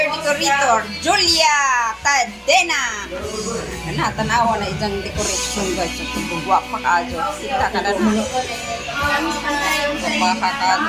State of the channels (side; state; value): both; identical; correlation 1.00